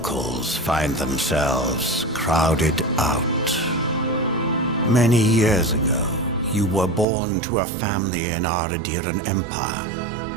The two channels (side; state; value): left; drops out; at 7.1 s